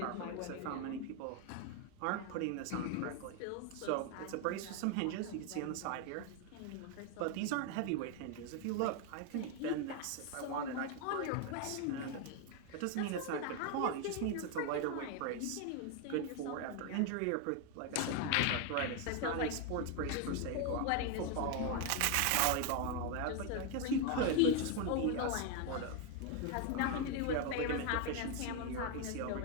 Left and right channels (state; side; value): different; both; correlation 0.01